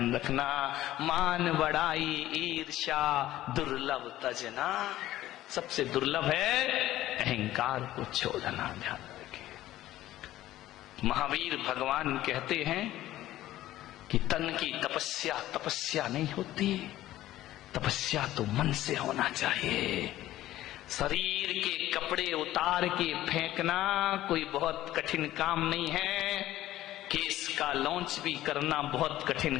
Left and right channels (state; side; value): quieter; right; 14.6 dB